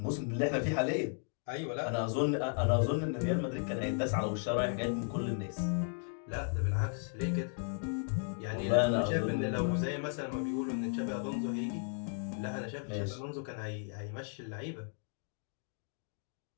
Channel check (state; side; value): silent; right; 54 dB below the other